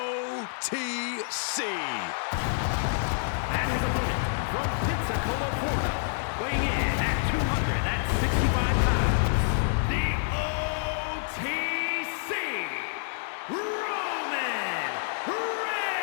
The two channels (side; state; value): right; silent; digital silence